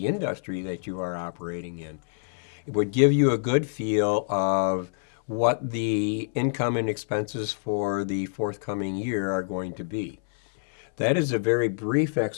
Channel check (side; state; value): right; silent; 61 dB below the other